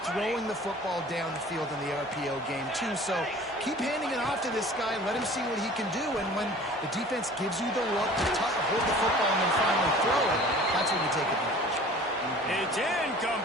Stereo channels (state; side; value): normal; both; correlation 0.45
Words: throwing the football down the field in the RPO game too. So keep handing it off to this guy. Let him see what he can do. And when the defense gives you the look to hold the football and then finally throw it, that's when you take advantage. It's